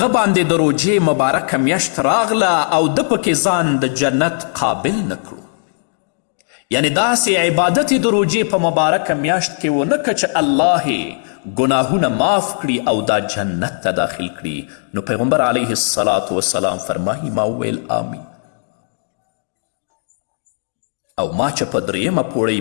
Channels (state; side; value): silent; right; digital silence